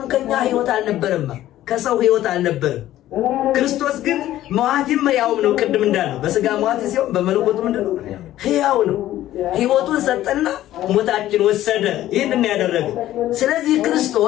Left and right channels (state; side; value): quieter; right; 13.8 dB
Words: ከኛ ሕይወት አልነበረም፣ ከሰው ሕይወት አልነበረም። ክርስቶስ ግን መዋቲም ሕያውም ነው። ቅድም እንዳለው በስጋ መዋቲ ሲሆን በመለኮቱ ምንድነው? ሕያው ነው። ሕይወቱን ሰጠና ሞታችን ወሰደ። ይህንን ያደረገ። ስለዚህ